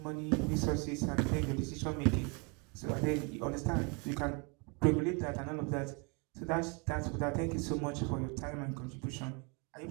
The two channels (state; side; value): quieter; left; 32.5 dB